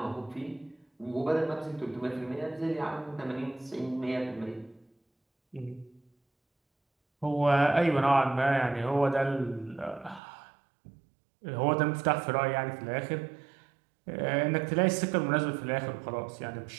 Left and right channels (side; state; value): left; drops out; at 10.2 s